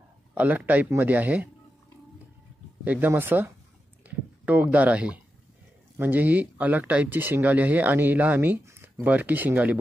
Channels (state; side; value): normal; both; correlation 0.89